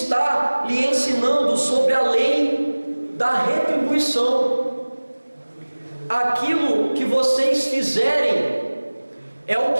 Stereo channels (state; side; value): inverted; both; correlation -1.00